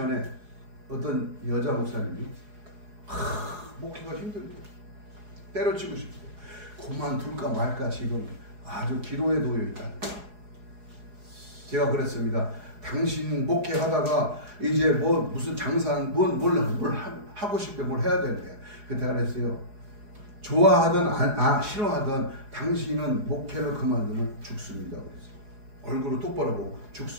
어떤 여자 목사님이 목회가 힘들고 때려치고 싶고 그만둘까 말까 지금 아주 기로에 놓여 있다. 제가 그랬습니다. 당신 목회하다가 이제 무슨 장사한 뭘 하고 싶대 뭘 해야 되는데 그때 그랬어요. 좋아하든 싫어하든 당신은 목회를 그만두면 죽습니다. 그랬어요. 얼굴을 똑바로 보고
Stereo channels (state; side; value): late; left; 4.8 ms